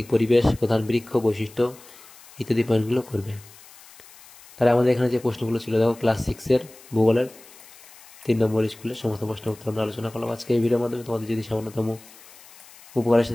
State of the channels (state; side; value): noise; left; hiss, 22 dB below the sound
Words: পরিবেশ, প্রধান বৃক্ষ, বৈশিষ্ট্য ইত্যাদি পয়েন্টগুলো করবে। তাহলে আমাদের এখানে যে প্রশ্নগুলো ছিল দেখো ক্লাস 6-এর ভূগোলের 3 নম্বর স্কুলের সমস্ত প্রশ্ন উত্তর আমরা আলোচনা করলাম আজকে এই ভিডিওর মাধ্যমে। তোমাদের যদি সামান্যতম উপকার এসে